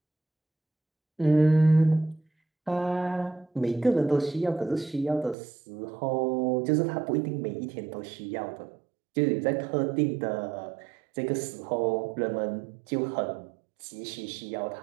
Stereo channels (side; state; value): left; drops out; at 5.4 s